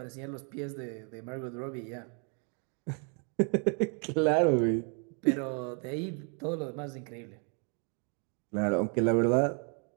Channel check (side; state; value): left; quieter; 38.8 dB